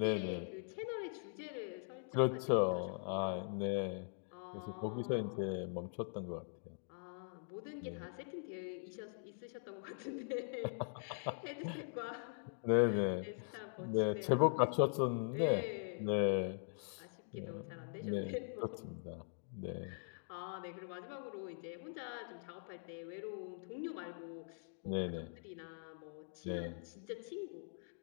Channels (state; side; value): silent; right; digital silence